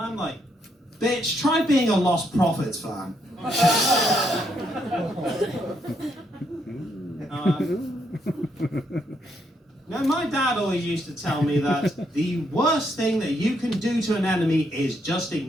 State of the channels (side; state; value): both; normal; correlation 0.75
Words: I'm like, bitch, try being a Lost Prophets fan. Now, my dad always used to tell me that the worst thing that you can do to an enemy is just